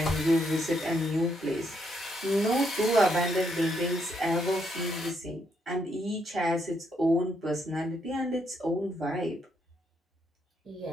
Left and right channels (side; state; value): both; normal; correlation 0.76